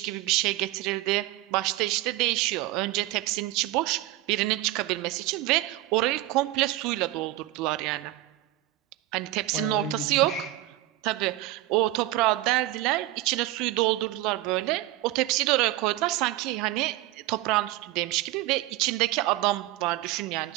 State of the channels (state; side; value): quieter; left; 16.6 dB